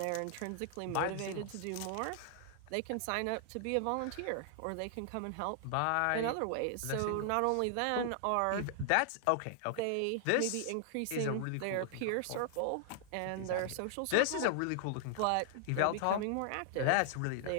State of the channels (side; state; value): both; different; correlation 0.00